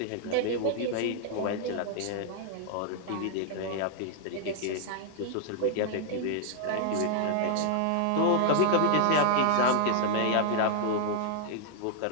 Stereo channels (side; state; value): both; different; correlation -0.01